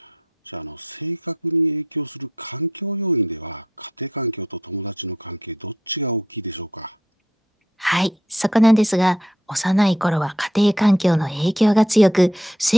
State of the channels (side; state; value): both; normal; correlation 0.70